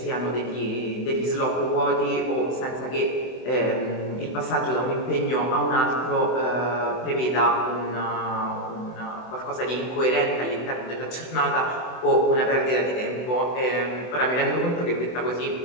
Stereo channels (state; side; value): late; right; 24 ms